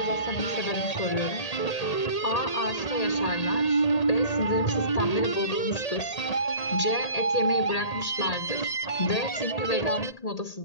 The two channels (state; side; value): late; right; 1.8 ms